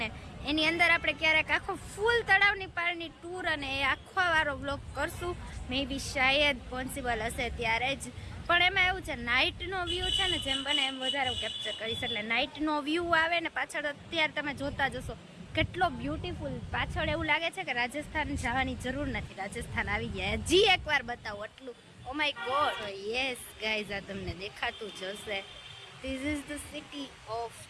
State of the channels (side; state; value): both; identical; correlation 1.00